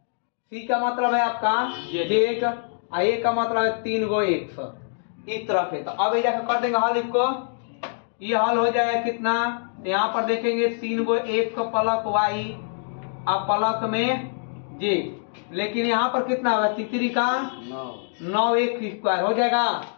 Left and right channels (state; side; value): silent; right; digital silence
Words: सी का मतलब है आपका जेड और ए का मतलब है 3 गो एक्स, इस तरह से। तो अब ये कर देंगे हल इसको, ये हल हो जाएगा कितना तो यहाँ पर देखेंगे 3 गो एक्स प्लस वाई और प्लस में जेड, लेकिन यहाँ पर कितना होगा तीसरी का 9 एक्स स्क्वायर हो जाएगा,